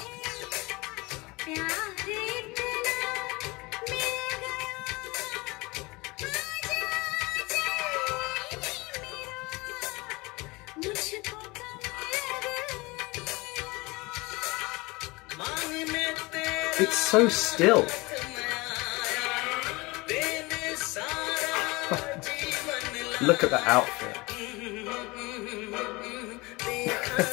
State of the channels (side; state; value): right; quieter; 23.7 dB